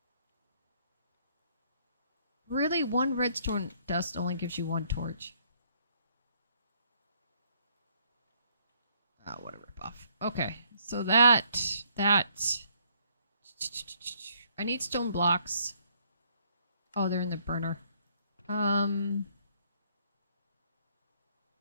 Really? 1 redstone dust only gives you 1 torch. Oh, what a ripoff. Okay, so that... I need stone blocks. Oh, they're in the burner.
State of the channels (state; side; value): inverted; both; correlation -0.67